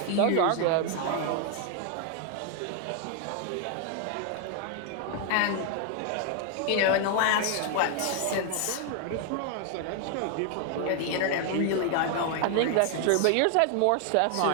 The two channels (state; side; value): different; both; correlation 0.00